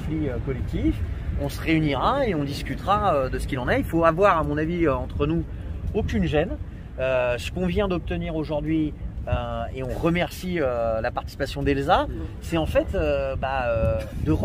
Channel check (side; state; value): both; identical; correlation 1.00